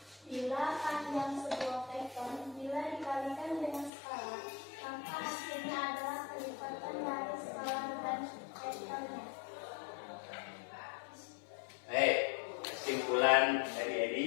Bila panjang sebuah vektor bila dikalikan dengan skala, maka hasilnya adalah kelipatan dari skala dan vektornya. Baik, kesimpulan dari Edi,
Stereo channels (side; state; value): right; drops out; at 3.9 s